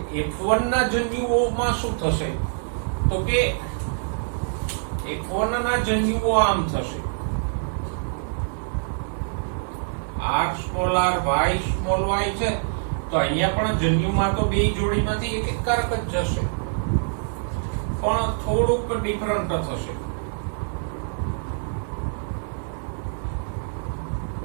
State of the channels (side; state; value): left; silent; digital silence